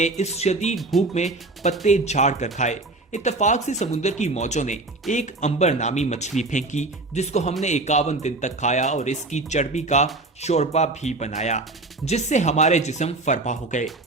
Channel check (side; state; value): left; quieter; 3.0 dB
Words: इस शदीद भूख में पत्ते झाड़ कर खाए। इत्तफाक से समुद्र की मौजों ने एक अंबर नामी मछली फेंकी, जिसको हमने 51 दिन तक खाया और इसकी चर्बी का शोरबा भी बनाया, जिससे हमारे जिस्म फरबा हो गए।